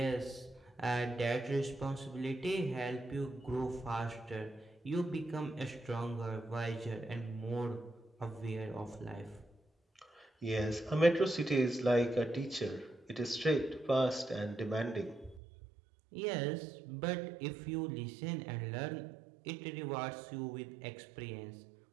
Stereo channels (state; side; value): drops out; left; at 15.4 s